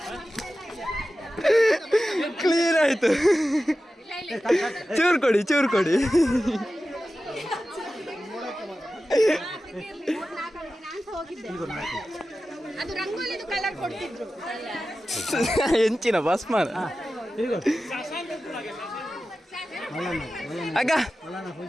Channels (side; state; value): both; normal; correlation 0.94